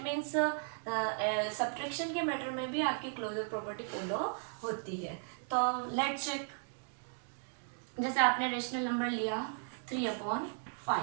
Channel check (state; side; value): silent; left; 54 dB below the other